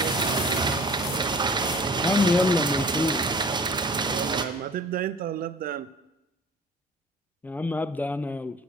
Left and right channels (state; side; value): normal; both; correlation 0.46